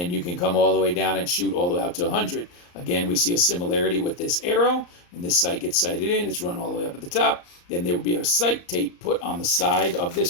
you can come all the way down and shoot all the way out to 100. Again, we see a similarity with this arrow. When this sight gets sighted in, it's run all the way up at the top. Then there would be a sight tape put on the side of this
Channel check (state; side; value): late; right; 34 ms